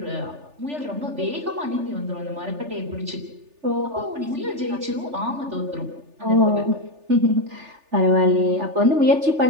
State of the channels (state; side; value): late; left; 3.4 ms